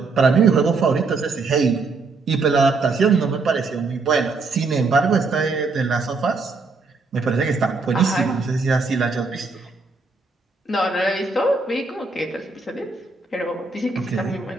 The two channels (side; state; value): left; quieter; 4.0 dB